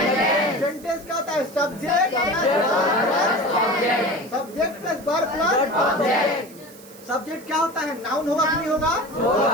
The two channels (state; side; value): noise; right; hiss, 21 dB below the sound